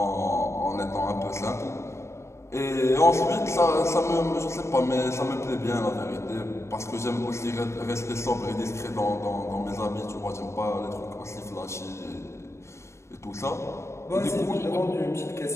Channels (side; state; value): right; late; 0.13 ms